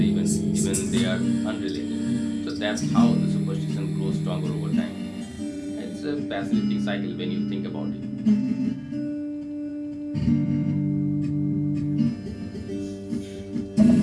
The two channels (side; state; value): both; identical; correlation 1.00